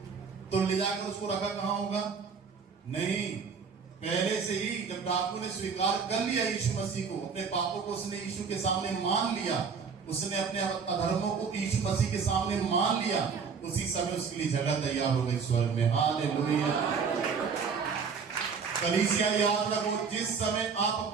तो ले जाकर उसको रखा कहां होगा? नहीं, पहले से ही जब डाकू ने स्वीकार कर लिया यीशु मसीह को, अपने पापों को उसने यीशु के सामने मान लिया, उसने अपने अधर्मों को यीशु मसीह के सामने मान लिया, उसी समय उसके लिए जगह तैयार हो गई स्वर्ग में। हालेलुया। कलीसिया याद रखो, जिस समय आप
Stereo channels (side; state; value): left; quieter; 5.8 dB